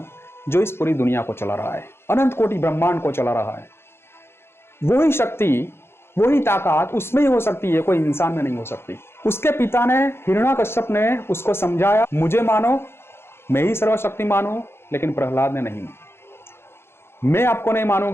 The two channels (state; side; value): late; right; 0.12 ms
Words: जो इस पूरी दुनिया को चला रहा है, अनंत कोटि ब्रह्मांड को चला रहा है। वही शक्ति, वही ताकत उसमें ही हो सकती है, कोई इंसान में नहीं हो सकती। उसके पिता ने, हिरण्याकश्यप ने उसको समझाया, मुझे मानो, मैं ही सर्वशक्तिमान हूं, लेकिन प्रहलाद ने नहीं। मैं आपको नहीं